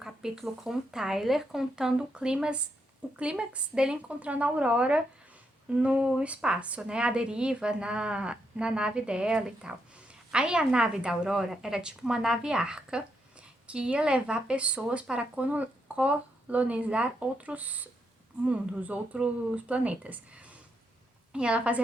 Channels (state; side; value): normal; both; correlation 0.80